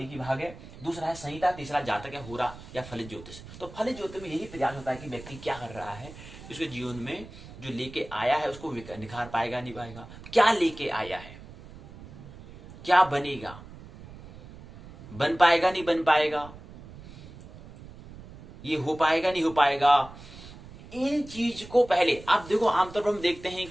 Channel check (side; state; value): right; noise; rumble, 17 dB below the sound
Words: ही भाग है। दूसरा है संहिता, तीसरा जातक या होरा या फलित ज्योतिष। तो फलित ज्योतिष में यही प्रयास होता है कि व्यक्ति क्या कर रहा है, उसके जीवन में जो लेके आया है उसको निखार पाएगा नहीं पाएगा, क्या लेके आया है, क्या बनेगा, बन पाएगा नहीं बन पाएगा, ये हो पाएगा नहीं हो पाएगा। इन चीज को पहले आप देखो, आमतौर पर हम देखते हैं